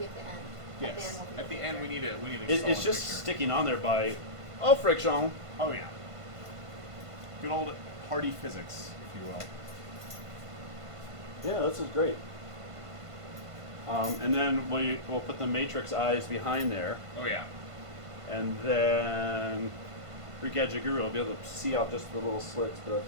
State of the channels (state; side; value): late; left; 1.5 ms